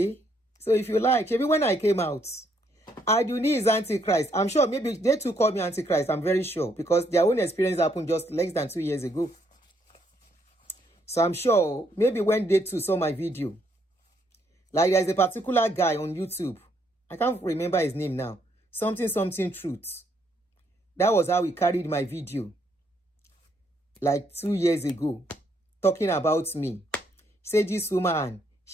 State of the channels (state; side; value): normal; both; correlation 0.72